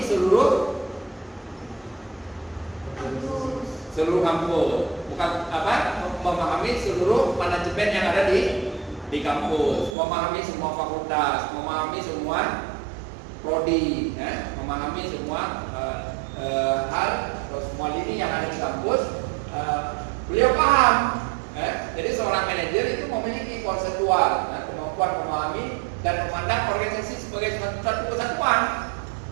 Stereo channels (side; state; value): left; drops out; at 10.0 s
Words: seluruh kampus, bukan memahami seluruh manajemen yang ada di kampus, memahami semua fakultas, memahami semua prodi, memahami semua hal atau semua lini yang ada di kampus. Beliau paham. Jadi seorang manajer itu memiliki konseptual, kemampuan memahami dan memandang organisasi sebagai satu kesatuan.